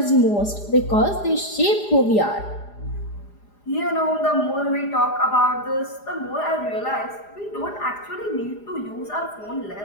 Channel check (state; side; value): late; right; 4.9 ms